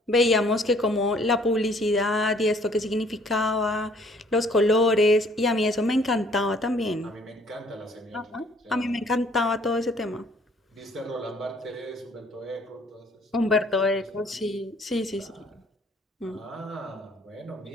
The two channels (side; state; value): both; normal; correlation 0.59